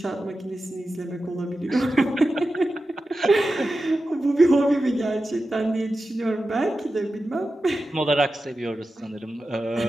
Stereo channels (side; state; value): both; normal; correlation 0.92